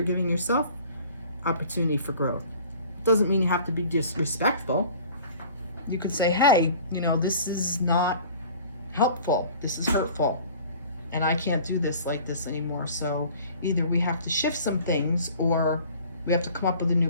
giving yourself opportunity for growth. Doesn't mean you have to be disrespectful. You could say, hey, you know, this is not helpful, this is hurtful, and I can't do this like this anymore. So either we have to shift some things, or we have to come up with a new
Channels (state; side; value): inverted; both; correlation -0.47